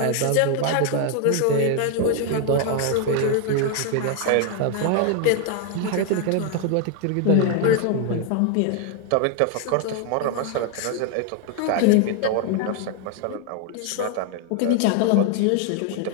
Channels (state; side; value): different; both; correlation 0.01